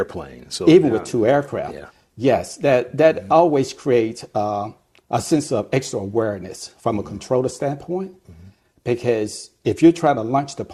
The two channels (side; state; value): both; identical; correlation 1.00